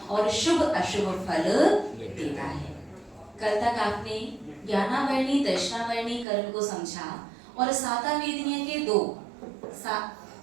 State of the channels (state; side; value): drops out; left; at 6.2 s